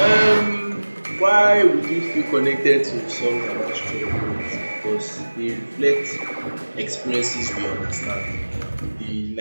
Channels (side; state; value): both; inverted; correlation -1.00